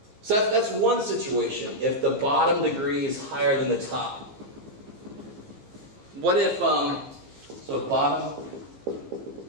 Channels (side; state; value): left; late; 15 ms